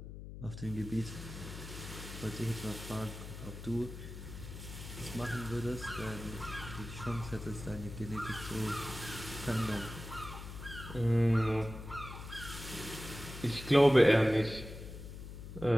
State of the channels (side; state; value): left; noise; hum, 11 dB below the sound